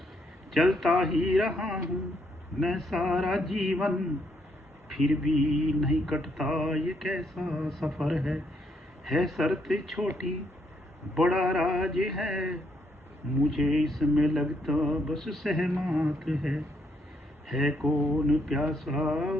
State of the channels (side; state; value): both; normal; correlation 0.74